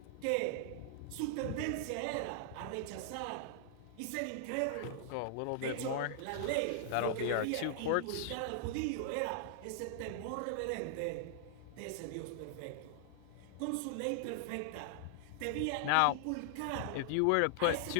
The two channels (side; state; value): both; different; correlation -0.01